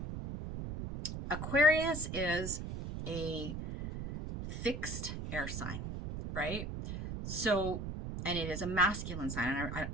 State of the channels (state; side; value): noise; right; rumble, 6 dB below the sound